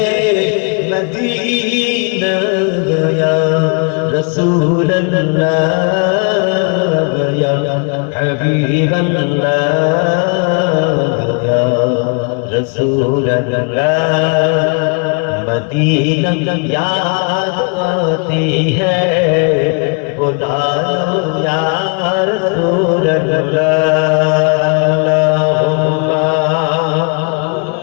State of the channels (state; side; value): quieter; right; 36.2 dB